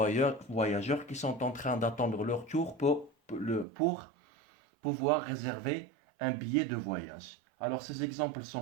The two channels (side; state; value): left; drops out; at 3.7 s